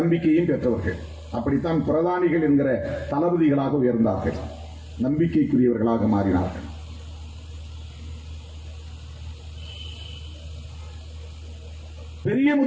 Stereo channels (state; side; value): identical; both; correlation 1.00